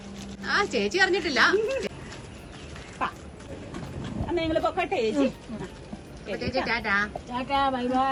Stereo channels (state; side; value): identical; both; correlation 1.00